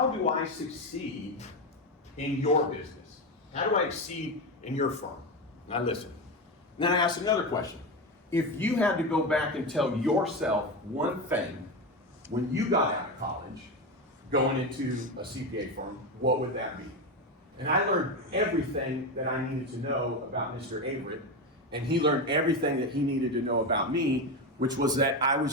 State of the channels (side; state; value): both; normal; correlation 0.16